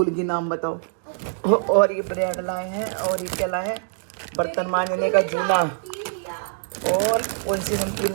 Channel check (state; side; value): silent; left; digital silence